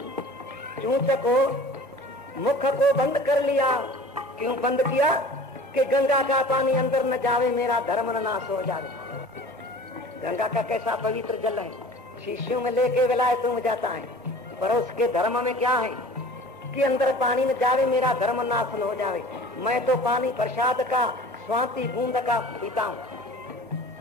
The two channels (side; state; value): both; normal; correlation 0.43